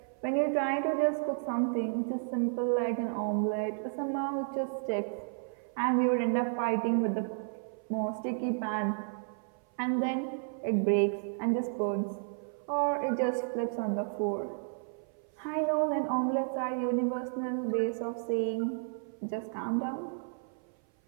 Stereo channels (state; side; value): silent; left; 55 dB below the other